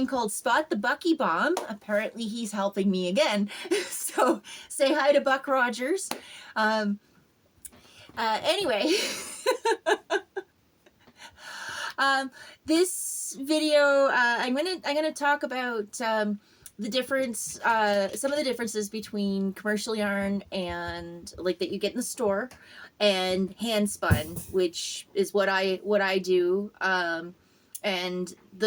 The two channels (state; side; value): identical; both; correlation 1.00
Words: called Spot the Bucky Bomb. Apparently, he's helping me again. So, say hi to Buck Rogers. Anyway, this video, I'm gonna talk about the difference, some of the differences between commercial yarn and like that you get in the store, and hand spun, which is what I do, and